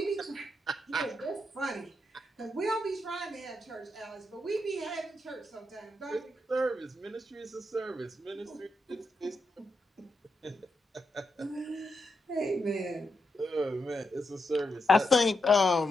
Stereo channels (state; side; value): normal; both; correlation 0.83